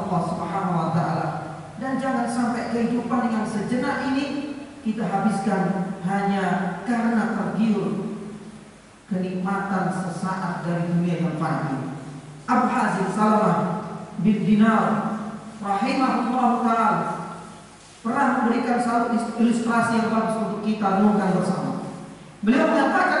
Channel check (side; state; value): both; identical; correlation 1.00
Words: Subhanahu wa taala. Dan jangan sampai kehidupan yang sejenak ini kita habiskan hanya karena tergiur kenikmatan sesaat dari dunia yang fani. Abu Hazim Salamah bin Dinar rahimahullah ta'ala pernah memberikan satu ilustrasi yang bagus untuk kita renungkan bersama. Beliau